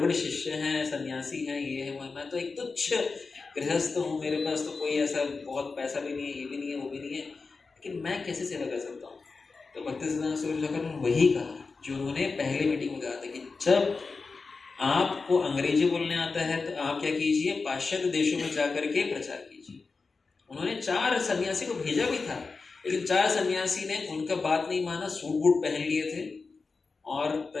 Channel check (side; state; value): right; quieter; 4.3 dB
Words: शिष्य हैं, सन्यासी हैं, ये है, मैं तो एक तुच्छ गृहस्थ हूँ, मेरे पास तो कोई ऐसा बहुत पैसा भी नहीं है, ये भी नहीं है, वो भी नहीं है, लेकिन मैं कैसे सेवा कर सकता हूँ? तो भक्ति सिद्धांत सरस्वती ठाकुर ने वही कहा जो उन्होंने पहले मीटिंग में कहा था कि जब आपको अंग्रेजी बोलने आता है तो आप क्या कीजिए, पाश्चात्य देशों में जाकर के प्रचार कीजिए। उन्होंने 4 सन्यासी को भेजा भी था, लेकिन 4 सन्यासी ने उनका बात नहीं माना, सूट बूट पहन लिए थे और